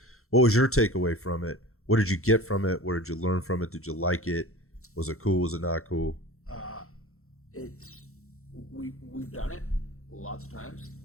what was your takeaway from it? What did you get from it? What did you learn from it? Did you like it? Was it cool? Was it not cool? We've done it lots of times,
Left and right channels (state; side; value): late; right; 0.63 ms